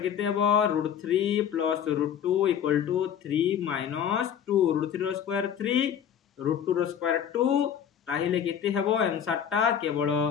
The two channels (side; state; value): right; quieter; 8.7 dB